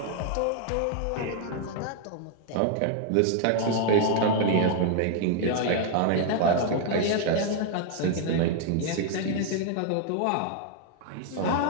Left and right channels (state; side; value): different; both; correlation 0.00